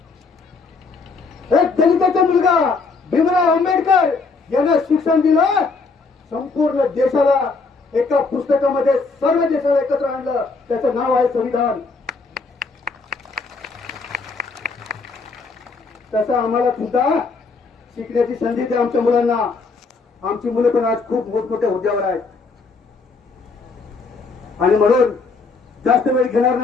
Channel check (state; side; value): quieter; right; 4.2 dB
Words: एक दलिताचा मुलगा भीमराव आंबेडकर यांना शिक्षण दिलं. संपूर्ण देशाला एका पुस्तकामध्ये सर्व देशाला एकत्र आणलं. त्याचं नाव आहे संविधान. तसं आम्हाला सुद्धा शिकण्याची संधी द्या आमच्या मुलांना. आमची मुलं पण आज खूप मोठमोठ्या हुद्द्यावर आहेत. आणि म्हणून जास्त वेळ घेणार